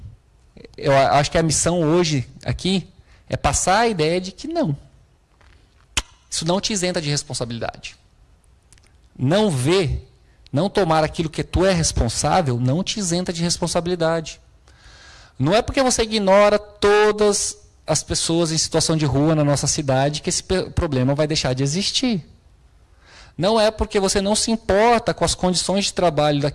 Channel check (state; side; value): identical; both; correlation 1.00